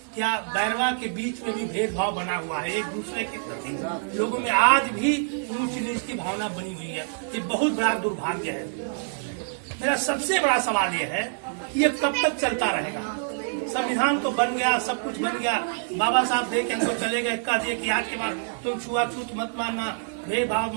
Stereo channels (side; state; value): left; silent; 61 dB below the other